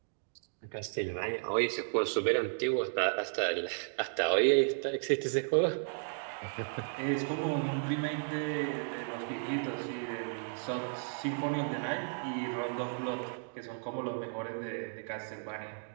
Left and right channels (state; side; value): silent; left; digital silence